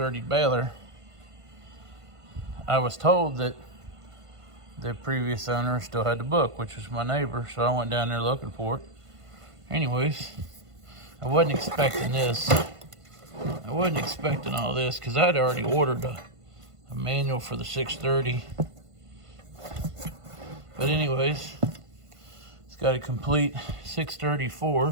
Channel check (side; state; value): left; late; 1.5 ms